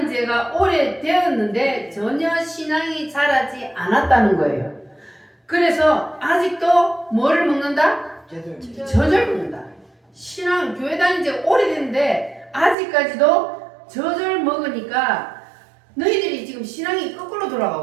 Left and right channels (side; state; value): left; drops out; at 12.8 s